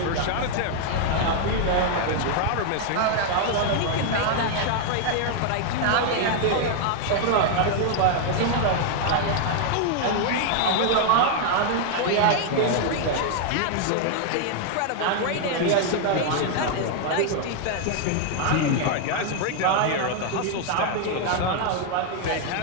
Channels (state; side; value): different; both; correlation 0.00